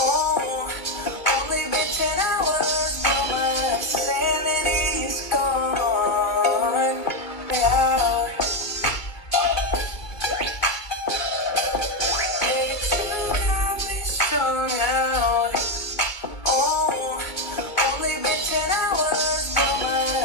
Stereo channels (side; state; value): right; late; 2.4 ms